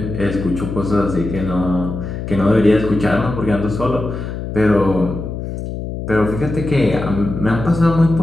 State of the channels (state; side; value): noise; left; hum, 6 dB below the sound